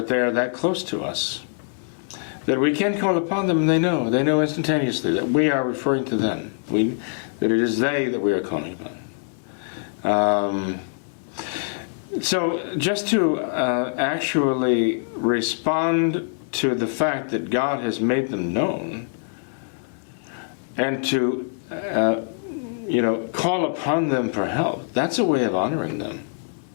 they are that close to us, that we can call upon them, and they know instantaneously that we are referring to them, that it is they that we are calling upon. So just to actually respond to the fact that God has made them known, and to call upon them for help, that's a way of honoring them,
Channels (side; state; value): right; silent; 57 dB below the other